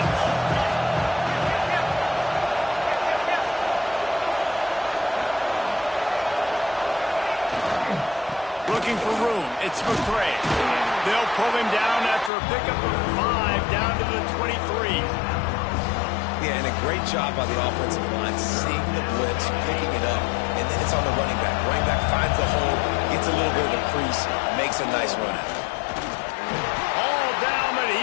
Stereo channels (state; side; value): drops out; right; at 12.3 s